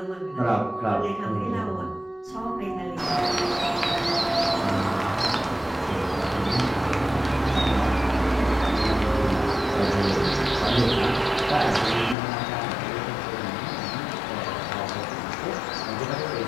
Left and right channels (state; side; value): drops out; right; at 12.2 s